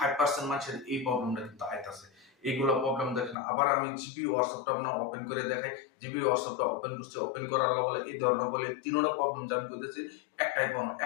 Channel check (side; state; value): right; drops out; at 3.4 s